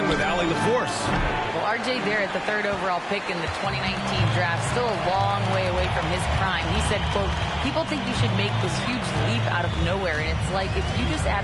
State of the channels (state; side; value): identical; both; correlation 1.00